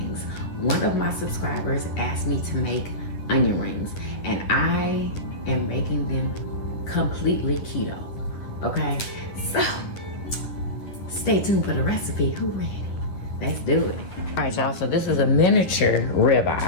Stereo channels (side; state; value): right; late; 11 ms